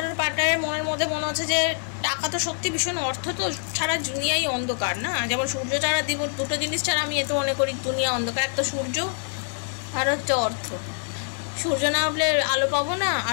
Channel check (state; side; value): silent; right; 62 dB below the other